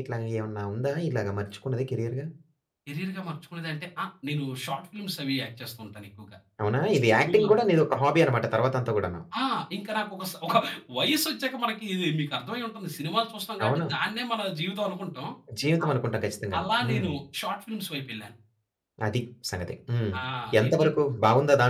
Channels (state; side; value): identical; both; correlation 1.00